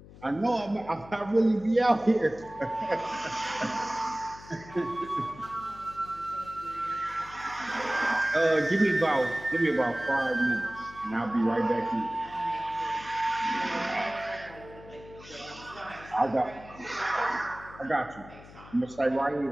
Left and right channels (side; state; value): left; noise; hum, 19 dB below the sound